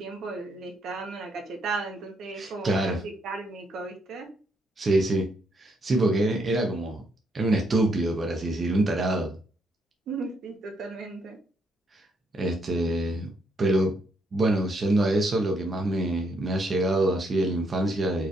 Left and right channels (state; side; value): normal; both; correlation 0.75